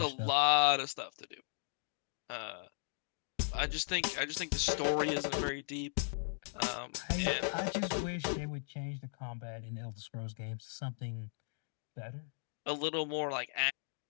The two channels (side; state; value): right; silent; digital silence